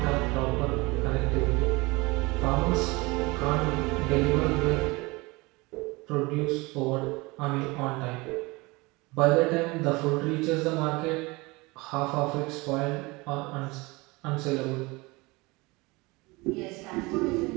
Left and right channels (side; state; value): left; quieter; 24.0 dB